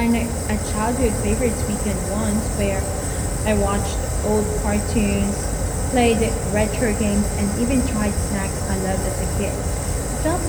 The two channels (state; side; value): identical; both; correlation 1.00